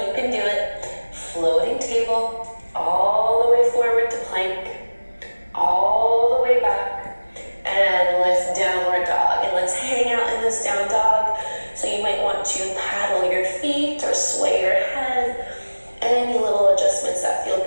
can do it. Floating table, all the way forward to plank, all the way back, and lift downward dog. And let's hang out in this down dog. So you might want to paddle your feet or sway your head. Any little adjustments that feel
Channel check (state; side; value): inverted; both; correlation -1.00